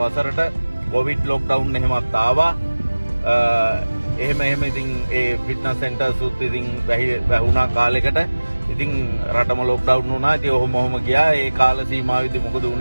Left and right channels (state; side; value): inverted; both; correlation -1.00